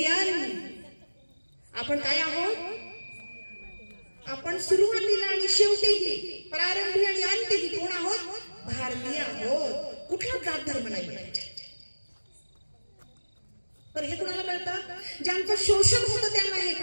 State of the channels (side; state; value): both; inverted; correlation -1.00